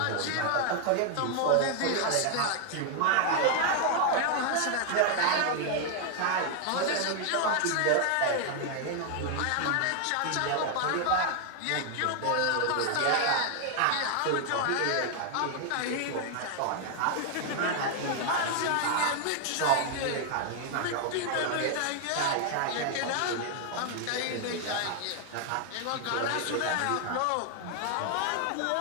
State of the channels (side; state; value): both; different; correlation 0.00